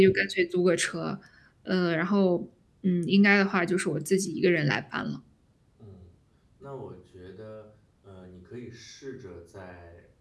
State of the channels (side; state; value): both; identical; correlation 1.00